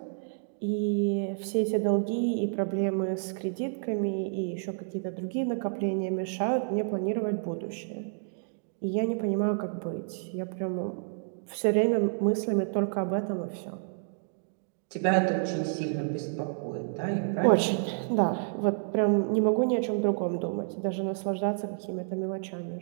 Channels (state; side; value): silent; left; digital silence